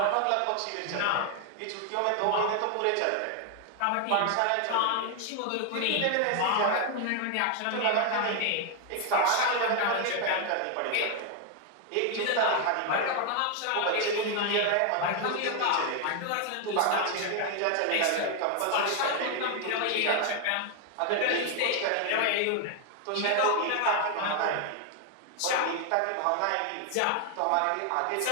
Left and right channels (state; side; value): different; both; correlation 0.01